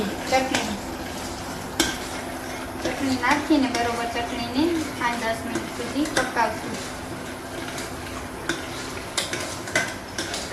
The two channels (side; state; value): both; identical; correlation 1.00